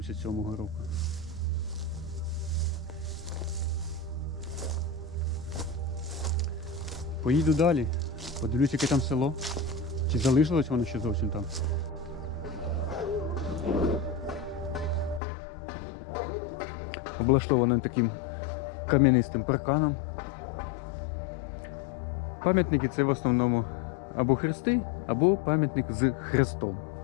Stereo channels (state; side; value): drops out; right; at 15.2 s